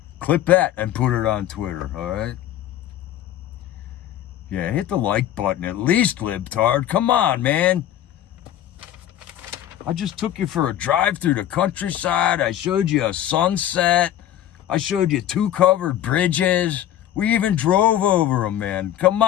clip that and put it on Twitter, all right? Yeah, hit the like button at least, libtard. Come on, man. I just took you for a drive through the countryside. I showed you a sunset. I showed you 2 covered bridges. We even drove over them, man. Come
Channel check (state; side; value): quieter; right; 11.9 dB